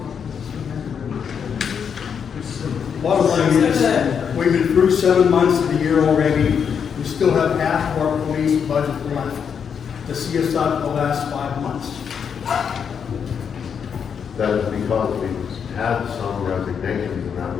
Bottom line is, we've been through 7 months of the year already. We still have half of our police budget left to see us out the last 5 months. That is because we've had some resignations and that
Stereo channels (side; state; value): right; quieter; 7.1 dB